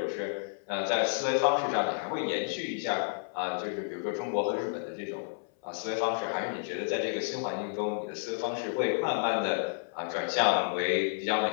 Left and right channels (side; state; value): right; silent; 57 dB below the other